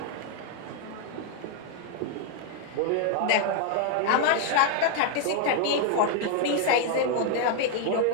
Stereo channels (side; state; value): both; different; correlation 0.00